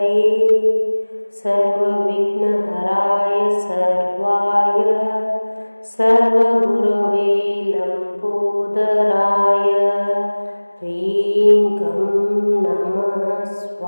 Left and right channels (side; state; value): both; inverted; correlation -1.00